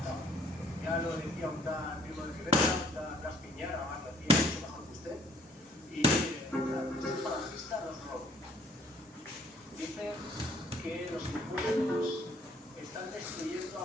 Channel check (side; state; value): both; normal; correlation 0.60